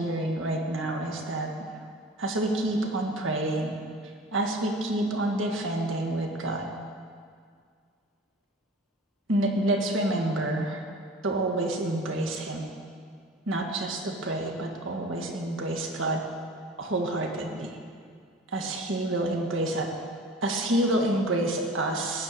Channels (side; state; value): both; normal; correlation 0.40